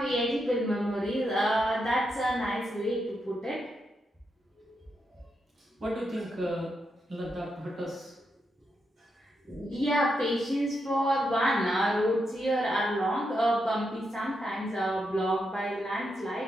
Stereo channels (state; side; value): normal; both; correlation 0.83